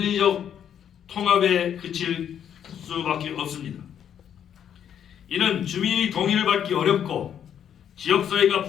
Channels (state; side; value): quieter; right; 9.1 dB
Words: 통합에 그칠 수밖에 없습니다. 이는 주민의 동의를 받기 어렵고 지역사회가